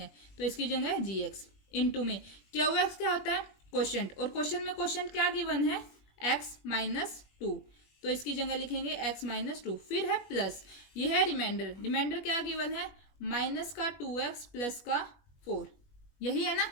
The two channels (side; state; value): right; late; 21 ms